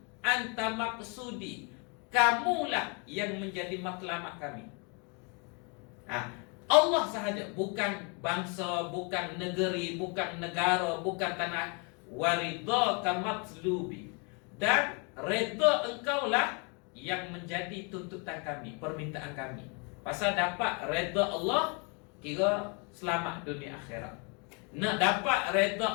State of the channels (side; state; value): right; quieter; 34.3 dB